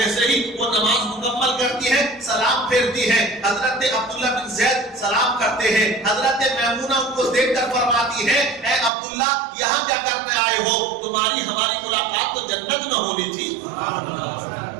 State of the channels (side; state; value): left; drops out; at 8.9 s